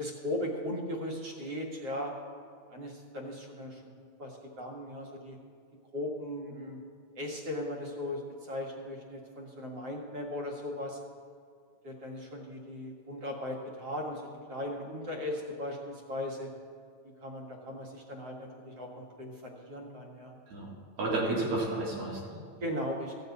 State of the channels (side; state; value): left; late; 9.1 ms